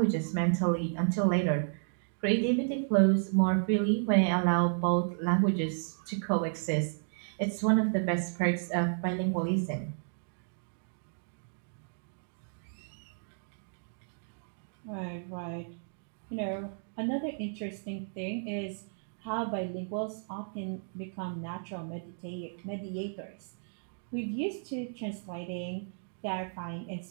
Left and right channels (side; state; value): left; silent; digital silence